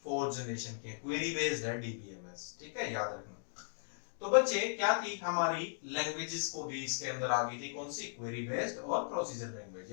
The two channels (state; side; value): silent; right; digital silence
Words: फोर्थ जनरेशन की, क्वेरी बेस्ड है DBMS। ठीक है, याद रखना। तो बच्चे क्या थी हमारी लैंग्वेजेस को भी इसके अंदर आ गई थी, कौन सी, क्वेरी बेस्ड और प्रोसीजर लैंग्वेज,